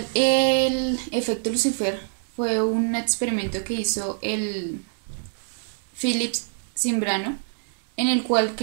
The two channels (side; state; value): left; silent; digital silence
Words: el efecto Lucifer fue un experimento que hizo el Philips Zimbrano, en el cual